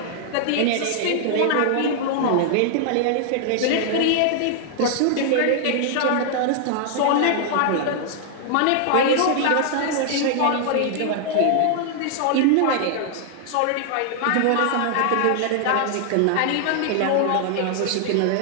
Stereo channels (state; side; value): different; both; correlation 0.00